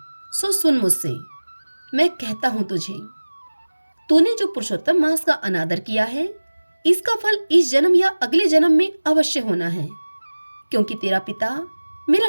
सो सुन मुझसे। मैं कहता हूं तुझे, तूने जो पुरुषोत्तम मास का अनादर किया है, इसका फल इस जन्म या अगले जन्म में अवश्य होना है। क्योंकि तेरा पिता मेरा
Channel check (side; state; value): both; inverted; correlation -1.00